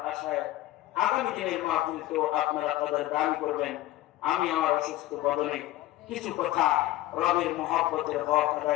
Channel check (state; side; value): quieter; right; 15.7 dB